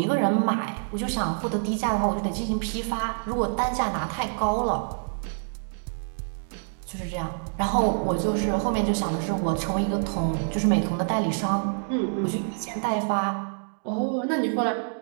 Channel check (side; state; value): left; silent; digital silence